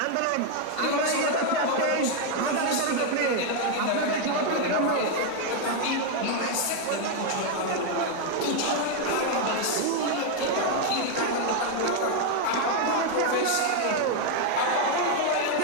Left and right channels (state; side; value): different; both; correlation 0.01